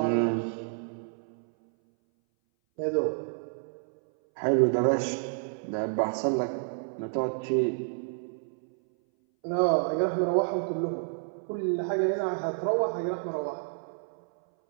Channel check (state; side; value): silent; left; 58 dB below the other